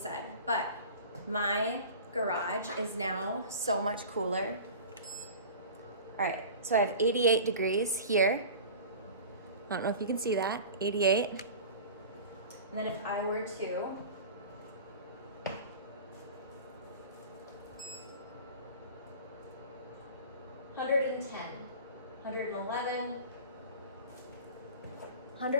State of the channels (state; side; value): inverted; both; correlation -0.38